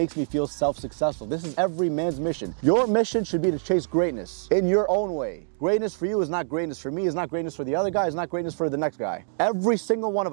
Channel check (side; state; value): left; silent; digital silence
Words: me feel self-successful. This is every man's mission. Your mission should be to chase greatness in your own way. Greatness for you is not greatness for me, is not greatness for the other guy, is not greatness for the next guy. Every single one